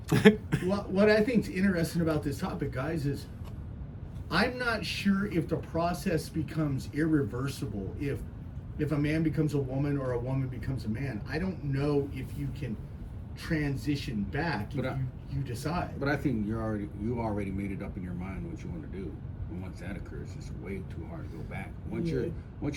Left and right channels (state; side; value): identical; both; correlation 1.00